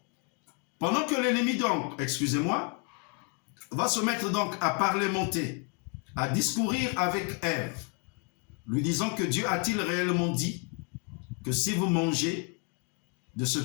pendant que l'ennemi donc, excusez-moi, va se mettre donc à parlementer, à discourir avec Ève, lui disant que Dieu a-t-il réellement dit que si vous mangez de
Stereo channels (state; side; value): quieter; right; 35.3 dB